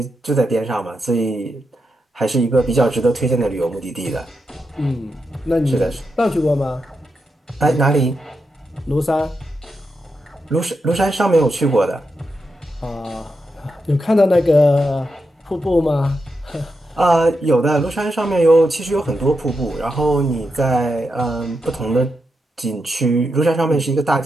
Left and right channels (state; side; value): normal; both; correlation 0.86